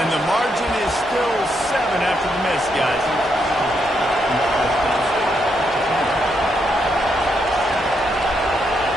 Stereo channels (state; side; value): normal; both; correlation 0.79